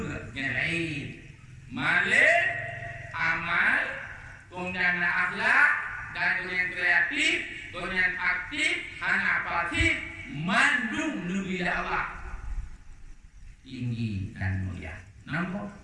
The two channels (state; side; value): identical; both; correlation 1.00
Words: yang lain. Malik, amal, kemudian akhlak, dan kemudian kreatif, kemudian aktif, anak pasif, mandung Nabi Allah. Tinggi dan mulia. Nampak?